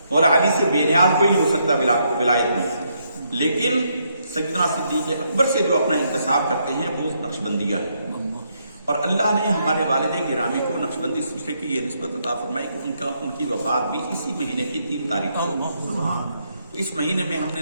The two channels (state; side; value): inverted; both; correlation -0.76